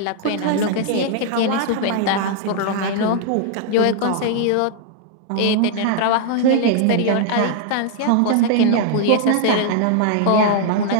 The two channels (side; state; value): both; different; correlation 0.00